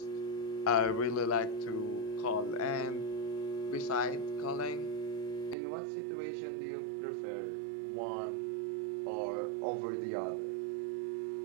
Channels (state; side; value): drops out; left; at 5.6 s